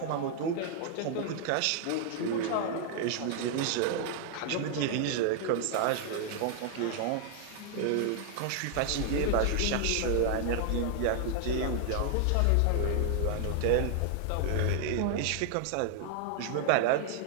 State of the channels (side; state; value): both; different; correlation 0.00